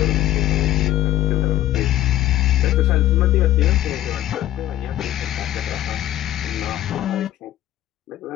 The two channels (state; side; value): quieter; right; 13.6 dB